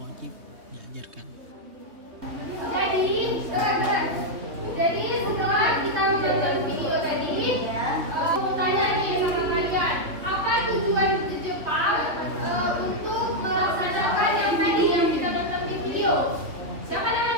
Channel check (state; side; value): late; left; 3.4 ms